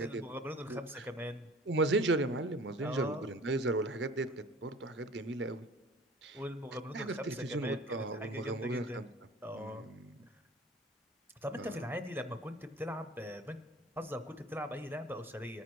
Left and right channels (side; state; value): both; normal; correlation 0.45